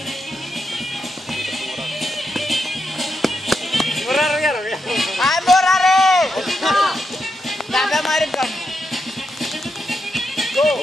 Morarul iară. Hai, Morare! Da, avea mai râncăm.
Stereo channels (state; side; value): normal; both; correlation 0.84